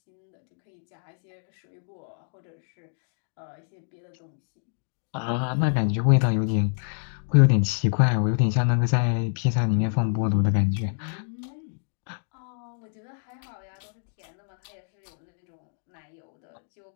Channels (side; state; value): right; silent; 59 dB below the other